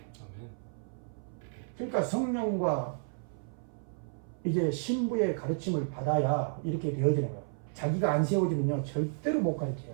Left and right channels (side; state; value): left; silent; 55 dB below the other